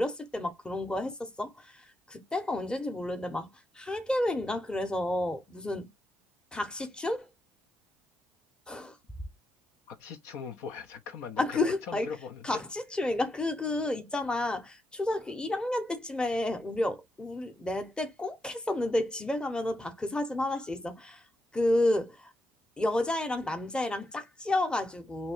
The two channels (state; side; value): normal; both; correlation 0.84